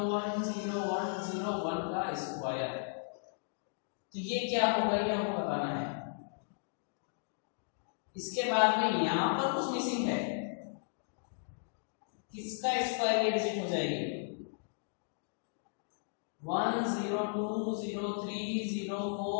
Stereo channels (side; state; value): right; silent; digital silence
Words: का स्क्वायर। तो ये क्या होगा ये हमको बताना है। इसके बाद में यहां पर कुछ मिसिंग है, किसका स्क्वायर ये डिजिट हो जाएगी